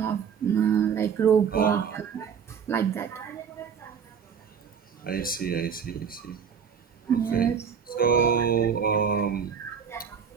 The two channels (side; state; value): left; quieter; 7.1 dB